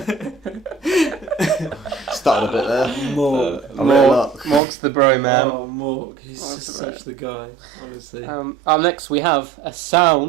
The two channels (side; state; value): left; drops out; at 4.6 s